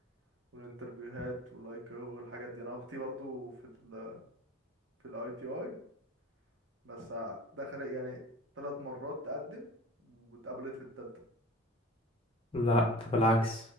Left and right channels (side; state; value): both; normal; correlation 0.41